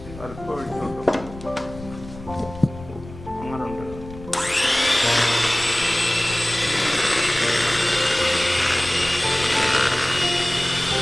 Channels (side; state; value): left; noise; rumble, 15 dB below the sound